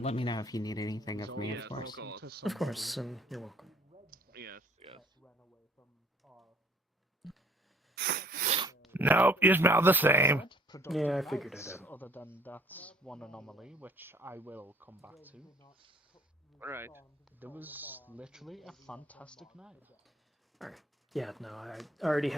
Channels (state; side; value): normal; both; correlation 0.57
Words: me know if you need anything of me, of course. Of course, and you're welcome. Yes, yes. Nope, you smell the same. Yeah, I figured it out. Other than that one anomaly, which I will come back to. Right. There was literally a fantastic night. Alright. Yeah, no, I already